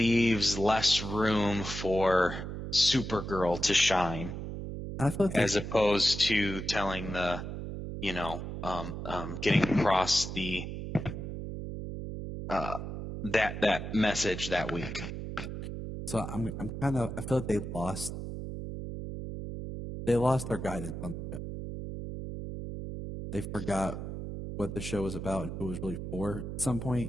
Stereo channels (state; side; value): noise; right; hum, 6 dB below the sound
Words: less room for Supergirl to shine. I feel like as opposed to telling getting across the that message that week. So I'm kind of, I feel like they lost their guidance on the show. They forgot what the show was about and who it was really for at some